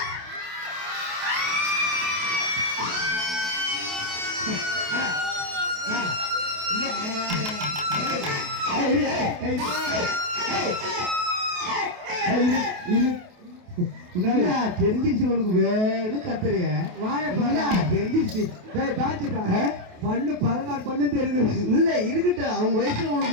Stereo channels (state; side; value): late; left; 28 ms